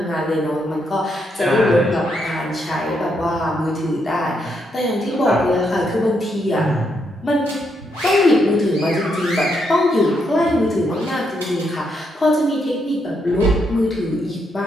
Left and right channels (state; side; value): normal; both; correlation 0.78